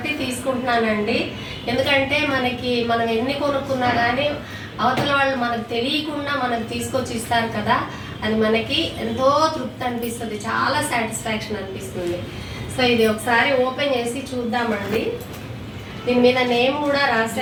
తీసుకుంటున్నానండి. ఎందుకంటే మనం ఎన్ని కొనుక్కున్నా కానీ అవతల వాళ్ళు మనకు తెలియకుండా మనకు తీసుకొచ్చి ఇస్తారు కదా, అది మనకి ఎంతో తృప్తి అనిపిస్తుంది, చాలా సాటిస్ఫాక్షన్ అనిపిస్తుంది. సో ఇది ఒకసారి ఓపెన్ చేసి చూద్దామండి. దీని మీద నేమ్ కూడా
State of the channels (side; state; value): both; identical; correlation 1.00